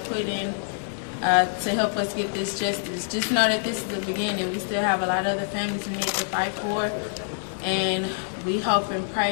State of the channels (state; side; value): silent; right; digital silence